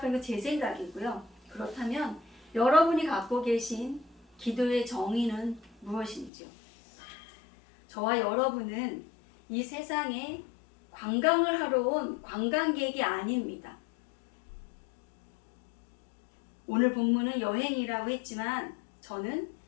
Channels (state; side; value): drops out; right; at 6.3 s